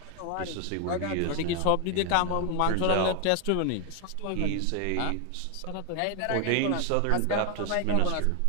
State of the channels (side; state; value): both; different; correlation 0.01